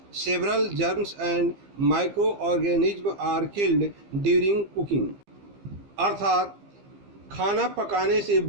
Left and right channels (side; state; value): left; late; 15 ms